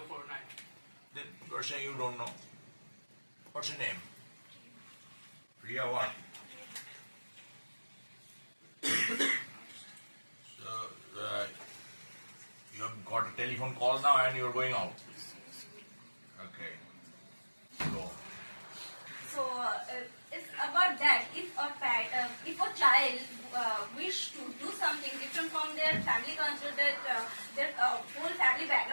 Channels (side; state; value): both; inverted; correlation -1.00